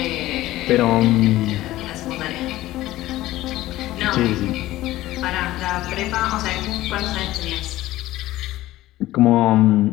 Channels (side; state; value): right; quieter; 16.1 dB